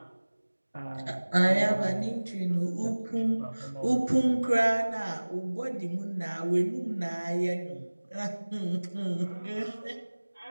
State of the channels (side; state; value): both; inverted; correlation -1.00